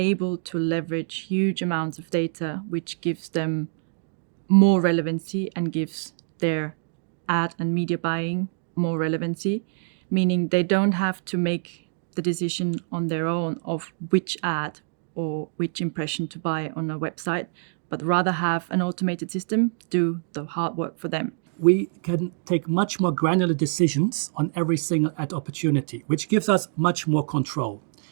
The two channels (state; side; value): silent; left; digital silence